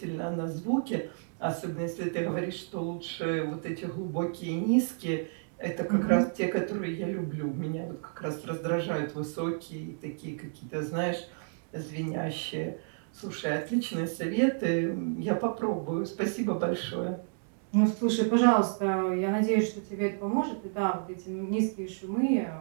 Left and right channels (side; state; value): left; silent; digital silence